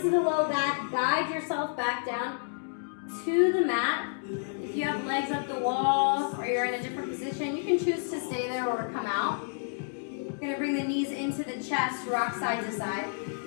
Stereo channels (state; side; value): silent; right; digital silence